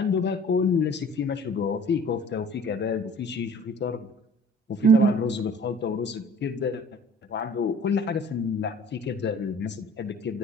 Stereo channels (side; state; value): both; normal; correlation 0.49